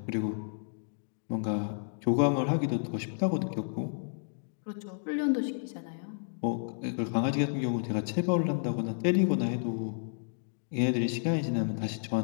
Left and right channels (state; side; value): silent; right; digital silence